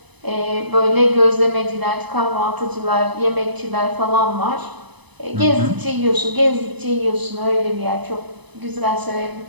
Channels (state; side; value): late; left; 1.0 ms